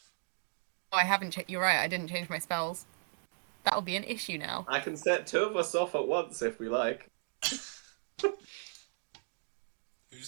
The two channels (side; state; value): left; silent; digital silence